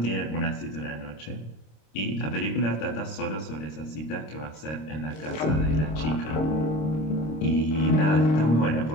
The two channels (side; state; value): right; late; 26 ms